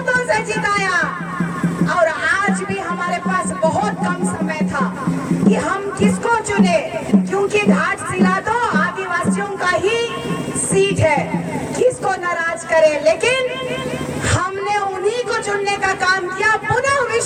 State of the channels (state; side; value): identical; both; correlation 1.00